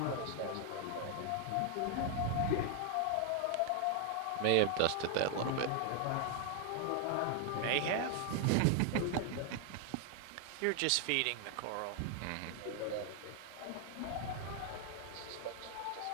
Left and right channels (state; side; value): different; both; correlation 0.00